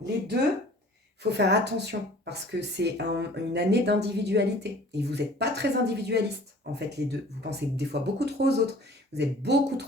les deux, il faut faire attention, parce que c'est une année d'individualité, et vous n'êtes pas très individualiste, en fait, les deux. Vous pensez des fois beaucoup trop aux autres, vous êtes beaucoup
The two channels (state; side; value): normal; both; correlation 0.48